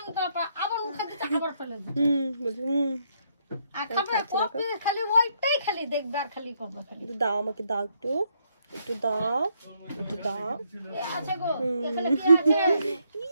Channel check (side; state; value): both; inverted; correlation -0.73